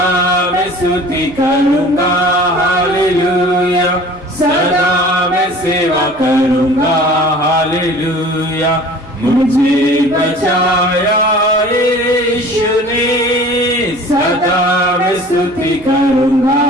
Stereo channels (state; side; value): normal; both; correlation 0.45